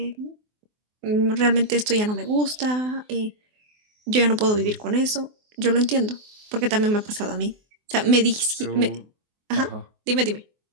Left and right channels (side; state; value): left; late; 24 ms